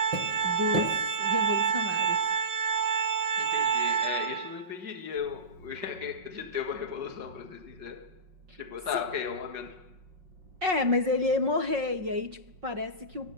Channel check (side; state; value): left; late; 5.5 ms